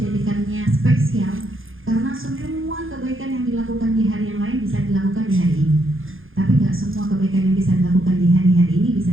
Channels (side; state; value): left; late; 0.59 ms